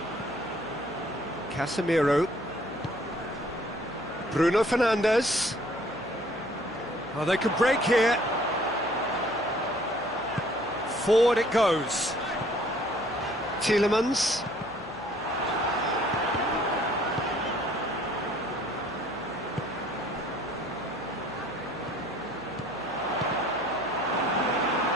Casemiro. Bruno Fernandes. Oh, they could break here. Forward it goes. Tielemans.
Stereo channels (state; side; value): noise; left; hum, 21 dB below the sound